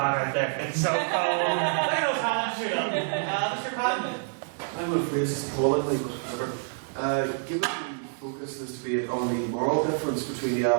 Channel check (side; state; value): left; silent; digital silence